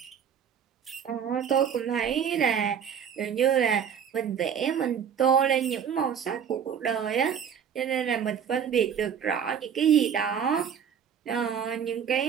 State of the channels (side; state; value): left; quieter; 7.9 dB